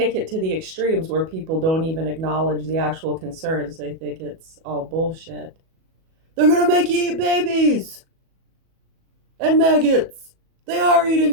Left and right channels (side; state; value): left; late; 37 ms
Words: it to the extremes where people don't even acknowledge the actual concerns. They think it's all bullshit. They're gonna make you eat babies and maggots. They are eating